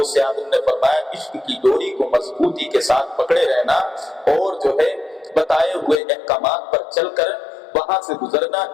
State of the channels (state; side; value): drops out; right; at 6.0 s